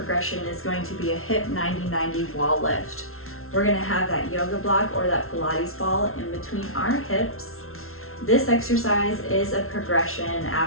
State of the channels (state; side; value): late; right; 0.62 ms